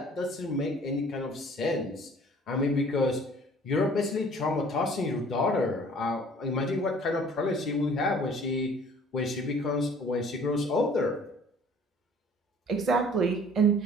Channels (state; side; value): normal; both; correlation 0.52